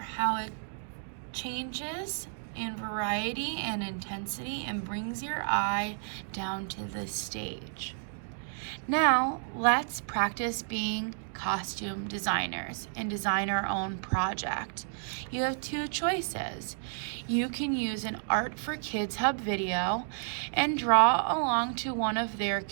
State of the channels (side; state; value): left; silent; digital silence